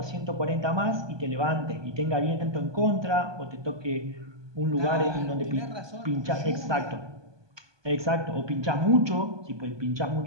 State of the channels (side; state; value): left; late; 1.2 ms